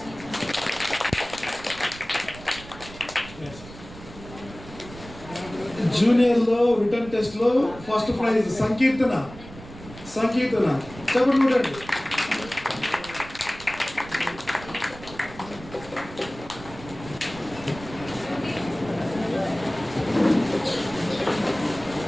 జూనియర్ లో రిటర్న్ టెస్ట్ లో ఫస్ట్ ప్రైజ్ సంకీర్తన. చెప్పండి చూడండి.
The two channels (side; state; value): right; noise; rumble, 16 dB below the sound